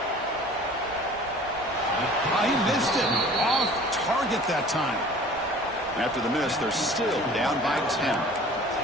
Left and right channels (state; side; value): normal; both; correlation 0.46